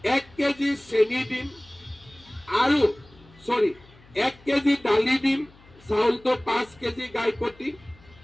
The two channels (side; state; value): left; noise; hum, 26 dB below the sound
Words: 1 কেজি চেনি দিম, আৰু 1 কেজি দালি দিম। চাউলটো 5 কেজি গাই প্ৰতি